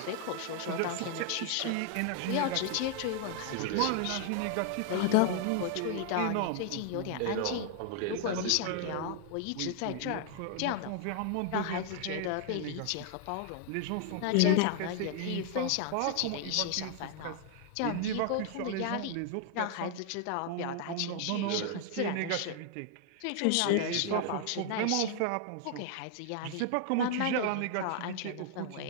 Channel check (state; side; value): different; both; correlation 0.00